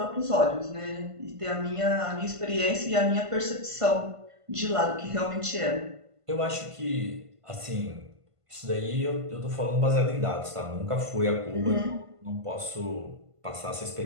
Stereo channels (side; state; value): left; late; 1.5 ms